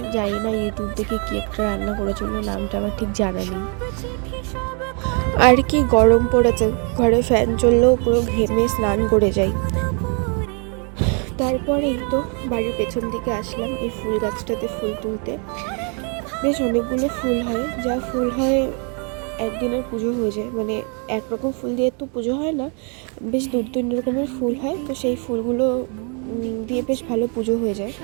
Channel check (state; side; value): quieter; left; 38.0 dB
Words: জানি না ইউটিউব থেকে কি একটা রান্না করেছিল, নামটা আমার ঠিক জানা নেই। আর কি গরম পড়েছে, ঘরে ফ্যান চললেও পুরো ঘেমে স্নান করে যাই। তারপরে এই তো বাড়ির পেছন দিকে আসলাম এই ফুল গাছটাতে ফুল তুলতে। বেশ অনেকগুলো ফুল হয়, যা ফুল হয় একদিনের পুজো হয়ে যায়, মানে একরকম ফুল দিয়ে তো পুজো হয় না, বেশ 2-3 রকমের ফুল হয়, তো সেই ফুলগুলো দিয়ে বেশ ভালো পুজো হয়ে যায়